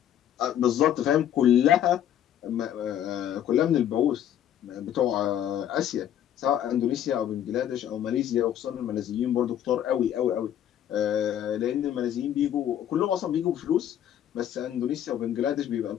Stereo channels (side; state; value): right; quieter; 10.6 dB